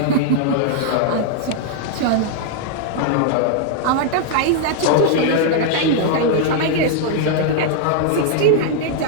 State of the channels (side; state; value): both; different; correlation 0.00